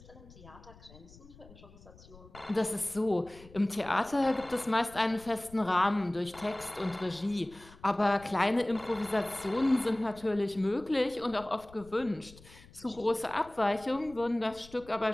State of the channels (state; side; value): noise; left; rumble, 22 dB below the sound